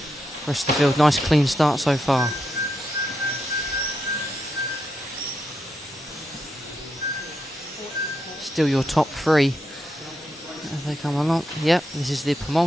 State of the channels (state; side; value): normal; both; correlation 0.84